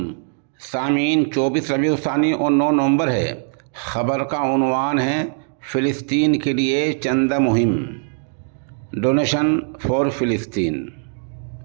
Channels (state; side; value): silent; left; digital silence